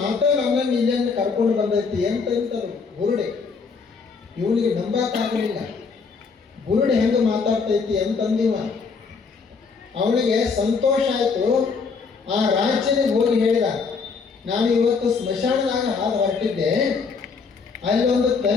ನಮ್ಮನ್ನು ಇಲ್ಲಿಂದ ಕರ್ಕೊಂಡು ಬಂದೈತಿ ಅಂತಂತರು ಬುರುಡಿ. ಇವನಿಗೆ ನಂಬಕ್ಕಾಗಲಿಲ್ಲ, ಬುರುಡಿ ಹೆಂಗೆ ಮಾತಾಡ್ತೈತಿ ಅಂತಂದಿವ. ಅವನಿಗೆ ಸಂತೋಷ ಆಯಿತು. ಆ ರಾಜ್ಯನಿಗೆ ಹೋಗಿ ಹೇಳಿದ, ನಾನು ಇವತ್ತು ಸ್ಮಶಾನದಾಗ ಹಾದು ಹೊರಟಿದ್ದೆ, ಅಲ್ಲಿ ಒಂದು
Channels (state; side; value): quieter; right; 5.1 dB